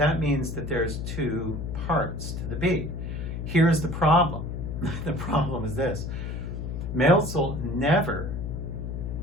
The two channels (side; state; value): left; noise; hum, 5 dB below the sound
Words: means that there's 2 parts to the beat. Here's the problem. The problem is this. Milzel never